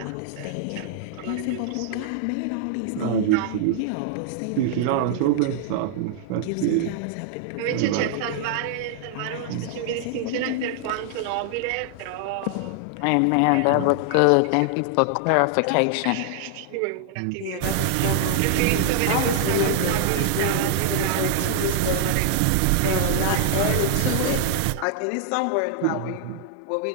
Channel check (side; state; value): both; different; correlation -0.01